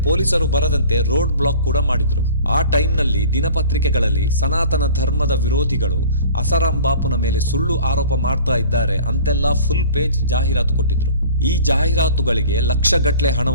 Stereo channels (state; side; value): inverted; both; correlation -0.44